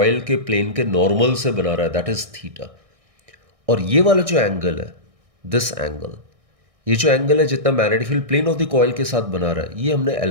के प्लेन के नॉर्मल से बना रहा है दैट इज थीटा। और ये वाला जो एंगल है, दिस एंगल, ये जो एंगल है जितना magnetic field plane of the coil के साथ बना रहा है, ये हमने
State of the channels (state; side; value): late; left; 1.6 ms